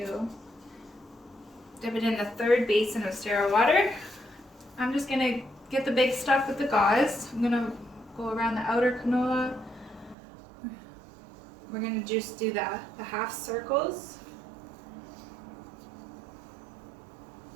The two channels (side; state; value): left; drops out; at 10.2 s